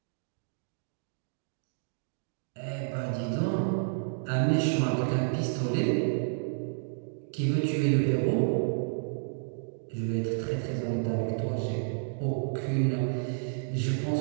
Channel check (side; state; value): left; silent; digital silence